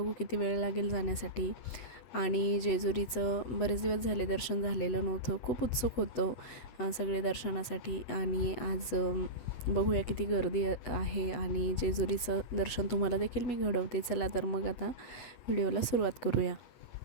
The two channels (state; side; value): late; right; 8.3 ms